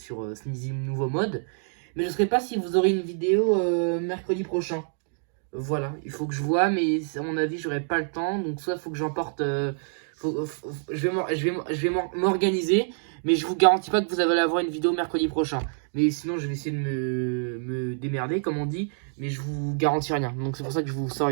Sneezy nouveau mode. Mais je ne sais pas si vous aurez une vidéo mercredi prochain. Voilà, il faut que je vois, mais à mon avis, j'aurai pas le temps. Donc, soit il faut que j'emporte. Je vais m'organiser, mais je vous garantis pas que vous allez avoir une vidéo mercredi prochain. Mais sinon, je vais essayer de me démerder, comme on dit, mais je vous garantis rien. Donc, c'est pour ça que je vous sors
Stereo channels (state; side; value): silent; left; digital silence